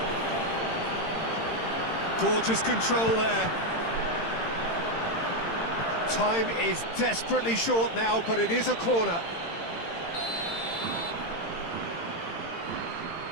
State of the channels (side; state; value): right; late; 18 ms